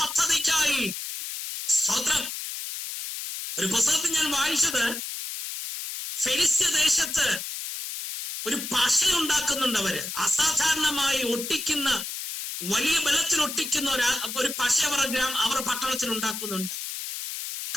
സ്തോത്രം. ഒരു പുസ്തകത്തിൽ ഞാൻ വായിച്ചത്, ഫെലിസ്ത്യ ദേശത്ത് ഒരു പശ ഉണ്ടാക്കുന്നുണ്ട് അവര്. അസാധാരണമായി ഒട്ടിക്കുന്ന, വലിയ ബലത്തിൽ ഒട്ടിക്കുന്ന ഒരു പശ അവരുടെ പട്ടണത്തിൽ ഉണ്ടാക്കുന്നുണ്ട്.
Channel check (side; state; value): left; noise; hiss, 6 dB below the sound